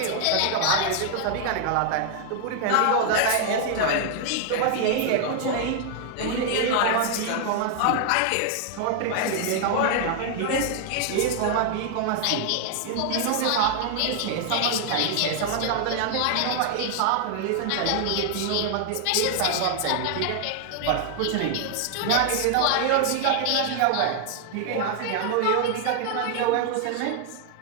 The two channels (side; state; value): both; different; correlation 0.00